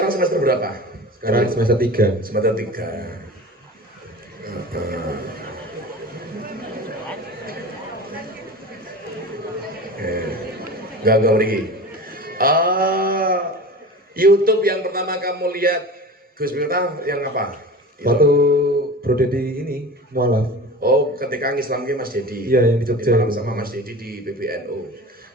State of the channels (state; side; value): normal; both; correlation 0.34